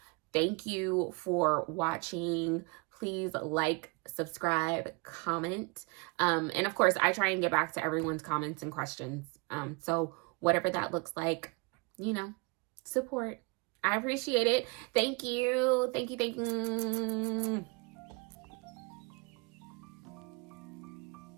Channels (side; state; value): left; quieter; 29.5 dB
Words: Thank you for watching. Please like, subscribe, comment. And of course, I try and get back to everyone's comments and questions. So whatever that looks like, you know, support. I appreciate it. Thank you. Thank you.